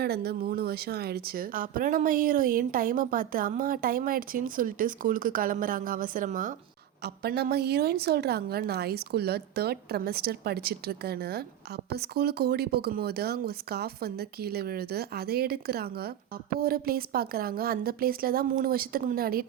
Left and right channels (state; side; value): quieter; left; 11.1 dB